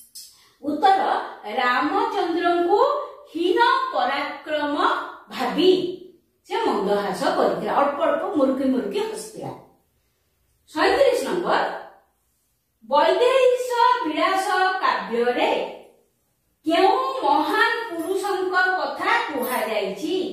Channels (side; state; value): both; identical; correlation 1.00